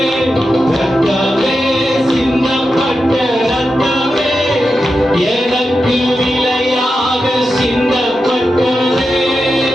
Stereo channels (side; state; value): both; normal; correlation 0.89